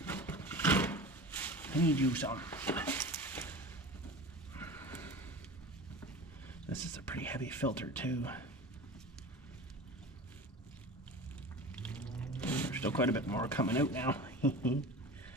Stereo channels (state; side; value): normal; both; correlation 0.34